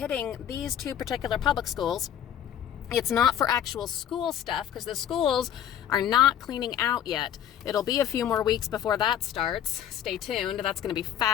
these 2 particular public schools, it's not for actual school stuff, because the schools are not cleaning out yet. It'll be a few more weeks before that starts. Stay tuned. That's going to be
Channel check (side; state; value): right; quieter; 10.1 dB